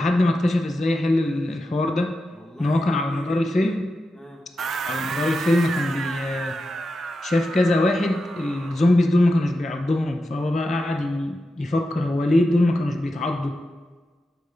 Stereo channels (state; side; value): normal; both; correlation 0.90